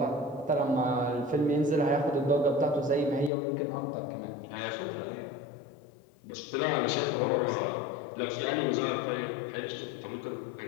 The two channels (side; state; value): right; drops out; at 3.3 s